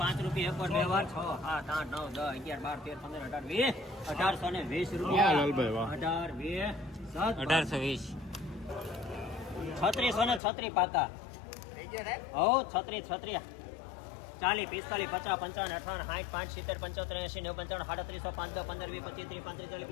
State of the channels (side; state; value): right; drops out; at 10.4 s